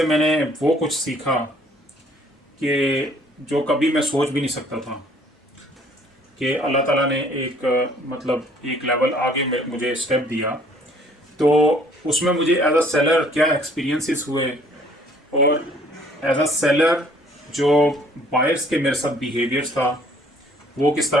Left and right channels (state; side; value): normal; both; correlation 0.59